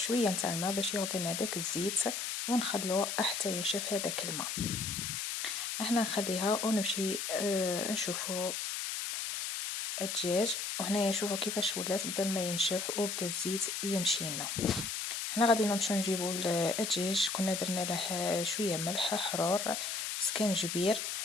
نتاع الماء باش يعطينا داك الزيت، ونخلوه حتى يشف هذاك الماء. هنا نخليها ونمشي نشوفو الدجاج. وهنايا شوفوا كيفاش ولات، بدا الماء ينشف وبدا الزيت يمشي لنا. هنا غادي نمشيو نجيبو الدجاج، كنا درنا له شويه ملح حرور سكنجبير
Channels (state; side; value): noise; left; hiss, 3 dB below the sound